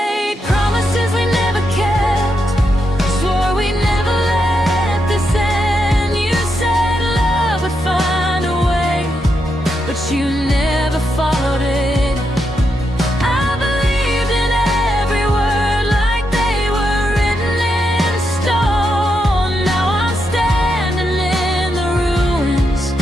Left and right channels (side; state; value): both; normal; correlation 0.83